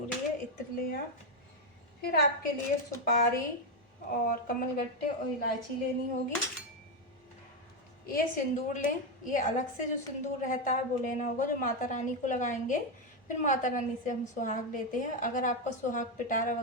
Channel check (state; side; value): normal; both; correlation 0.06